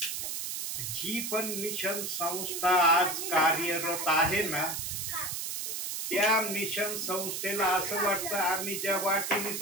जी पण मिशन संस्था आज कार्यरत आहे ना त्या मिशन संस्थेला असं वाटतं आम्ही ज्या वाटेने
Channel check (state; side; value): noise; right; hiss, 4 dB below the sound